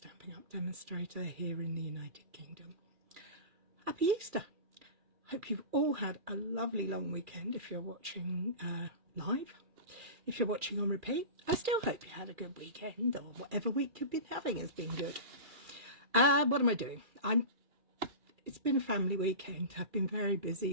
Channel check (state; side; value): late; left; 2.4 ms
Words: Up demonstrator here in the United Kingdom. Happy Easter! Hope you've all had a lovely long weekend if you're watching live. If you're watching on repeat, I still hope you had a good weekend, or whatever week you've been having has been good. What am I doing? It's been a family weekend. I've been very